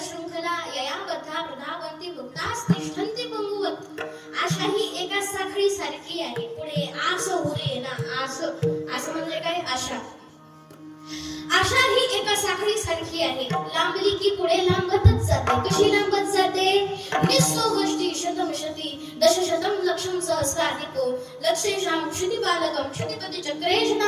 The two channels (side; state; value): both; identical; correlation 1.00